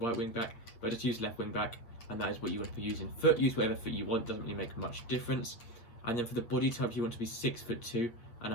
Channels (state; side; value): late; right; 8.7 ms